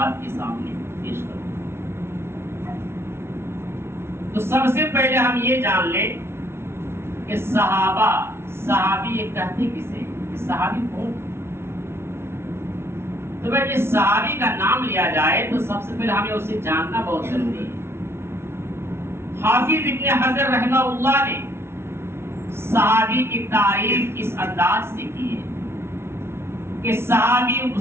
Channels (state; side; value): late; left; 0.12 ms